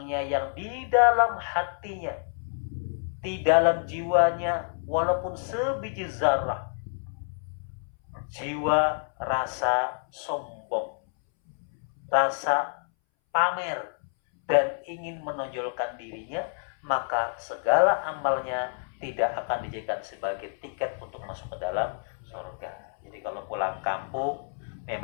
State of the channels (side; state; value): right; silent; 59 dB below the other